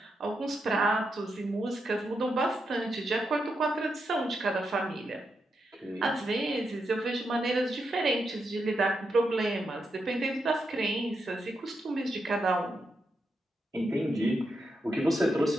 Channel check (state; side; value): normal; both; correlation 0.84